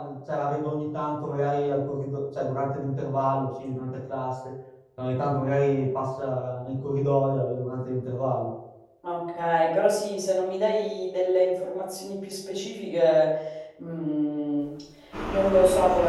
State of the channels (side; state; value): both; identical; correlation 1.00